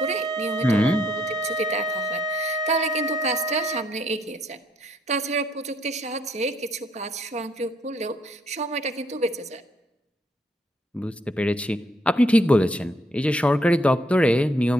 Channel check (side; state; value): both; normal; correlation 0.70